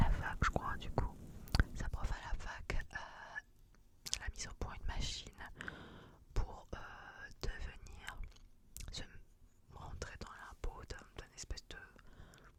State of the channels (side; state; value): both; identical; correlation 1.00